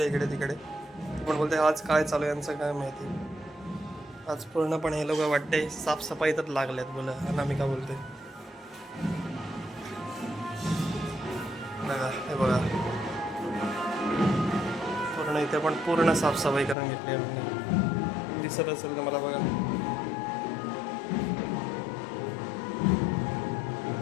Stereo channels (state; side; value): drops out; right; at 16.8 s